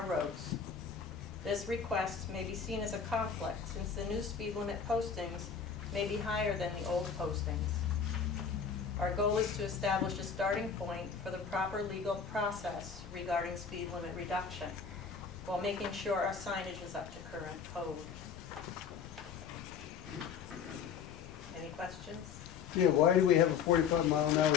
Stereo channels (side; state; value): right; quieter; 6.6 dB